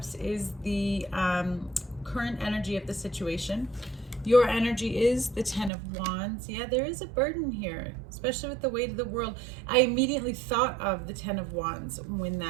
is the current energy of the situation. Your energy is the Ten of Wands. Yeah, there is a burden here, especially with the weight of the world. I immediately thought of the Ten of Wands when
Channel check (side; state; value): left; drops out; at 5.7 s